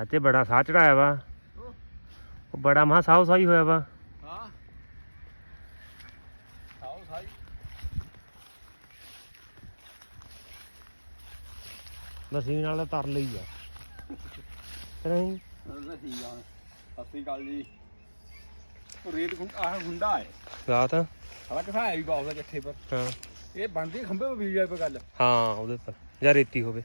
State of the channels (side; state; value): both; inverted; correlation -1.00